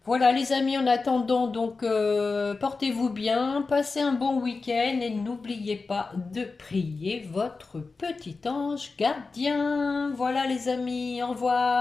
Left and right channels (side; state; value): right; quieter; 4.1 dB